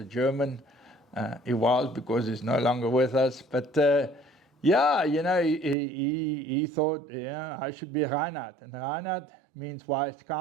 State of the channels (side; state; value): left; drops out; at 5.8 s